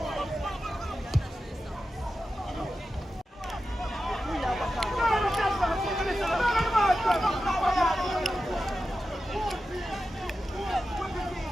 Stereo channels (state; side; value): normal; both; correlation 0.92